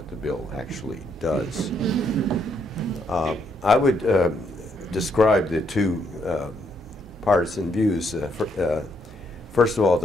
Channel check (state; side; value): normal; both; correlation 0.74